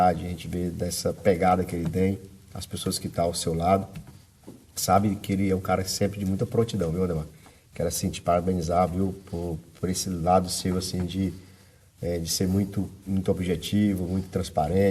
a gente vê dessa pegada que ele tem, as pessoas que estão ao seu lado. Sabe que ele é um cara sempre de muita prontidão, viu, Ademar? Quero, assim, te parabenizar, viu, por esse lado seu, assim, de ser muito objetivo, muito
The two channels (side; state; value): both; identical; correlation 1.00